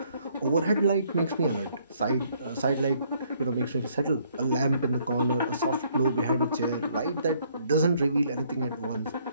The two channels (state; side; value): inverted; both; correlation -0.66